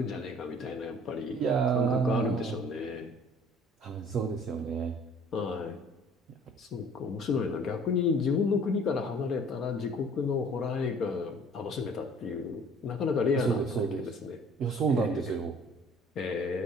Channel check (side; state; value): both; normal; correlation 0.52